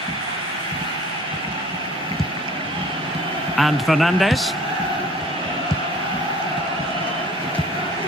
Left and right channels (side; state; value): both; normal; correlation 0.49